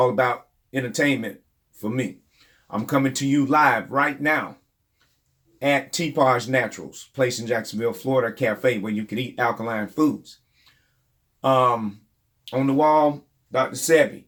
about entertainment for me. I'm coming to you live right now at Teapot's Naturals, place in Jacksonville, Florida, cafe where you can eat alkaline foods. On the wall, Dr. Sebi,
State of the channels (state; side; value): identical; both; correlation 1.00